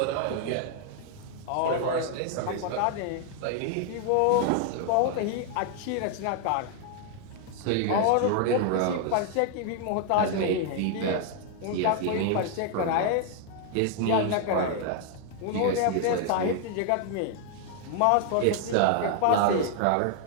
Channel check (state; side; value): different; both; correlation 0.00